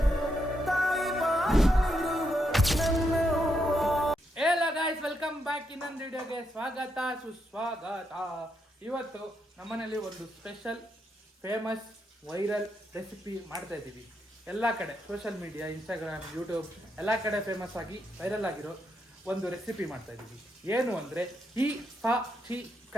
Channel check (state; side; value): normal; both; correlation 0.80